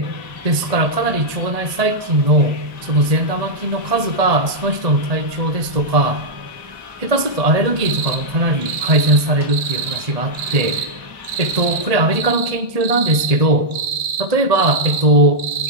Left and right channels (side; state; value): left; late; 1.7 ms